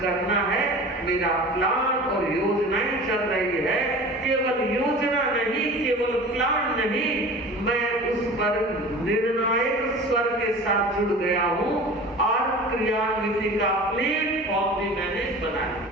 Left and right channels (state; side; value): normal; both; correlation 0.38